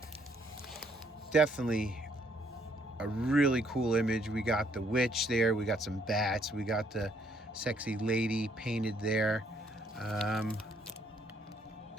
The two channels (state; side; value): normal; both; correlation 0.68